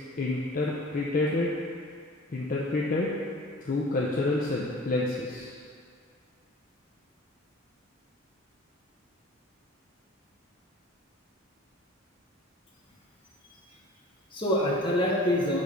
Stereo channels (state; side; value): normal; both; correlation 0.44